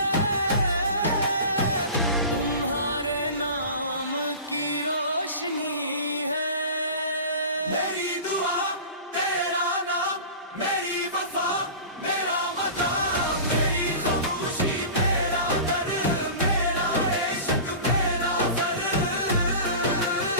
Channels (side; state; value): both; inverted; correlation -0.35